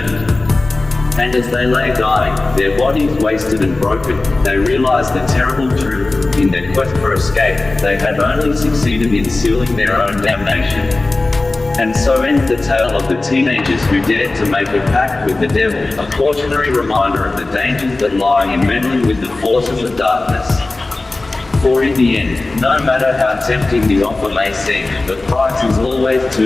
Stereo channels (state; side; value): quieter; right; 3.2 dB